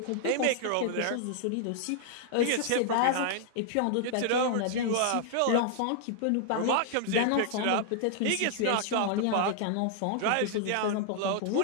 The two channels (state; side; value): different; both; correlation -0.01